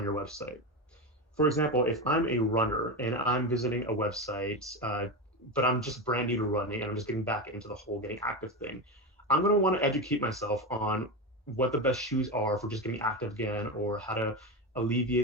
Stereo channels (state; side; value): normal; both; correlation 0.18